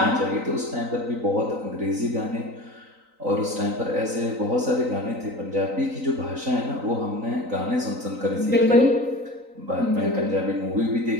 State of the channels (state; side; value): late; left; 3.9 ms